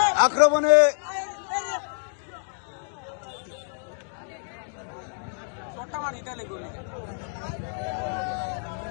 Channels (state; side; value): silent; right; 56 dB below the other